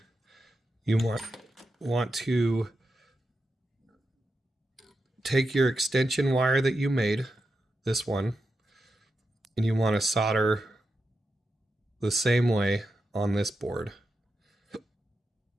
you want to take your extension wire that you made, this one, and you want to solder the same way on this board.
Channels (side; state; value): both; normal; correlation 0.88